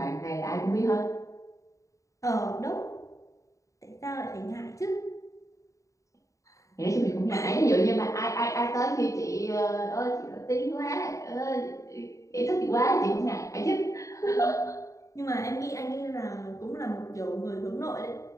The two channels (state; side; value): late; right; 0.16 ms